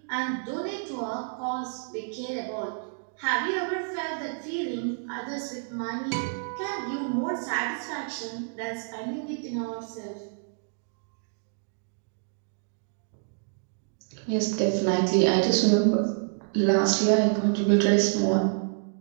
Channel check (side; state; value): left; silent; digital silence